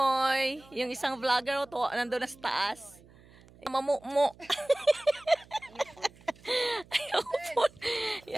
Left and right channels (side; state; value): right; noise; hum, 25 dB below the sound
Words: Yung isang vlogger to, nandun na sa taas. Mamumo. Ayaw po.